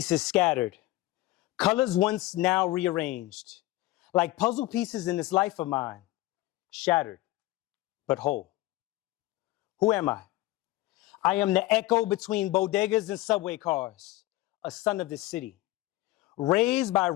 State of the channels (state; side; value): quieter; right; 17.9 dB